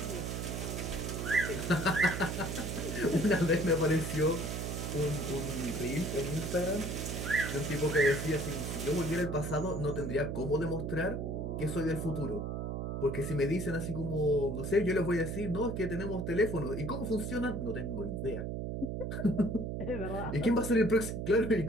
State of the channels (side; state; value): right; noise; hum, 3 dB below the sound